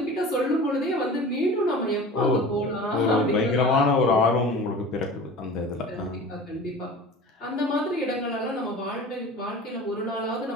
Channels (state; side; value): normal; both; correlation 0.38